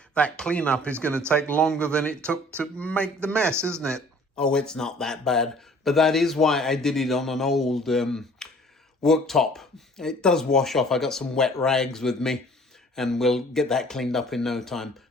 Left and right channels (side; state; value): both; normal; correlation 0.52